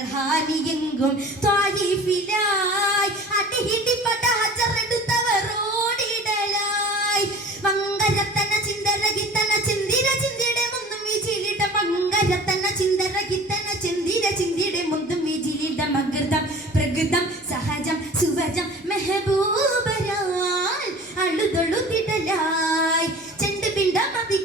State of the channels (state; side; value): normal; both; correlation 0.42